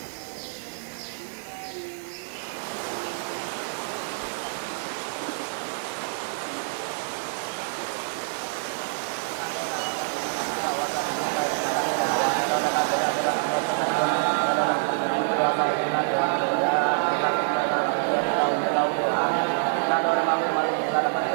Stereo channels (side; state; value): left; silent; digital silence